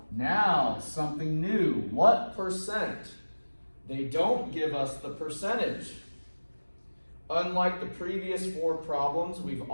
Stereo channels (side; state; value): both; inverted; correlation -1.00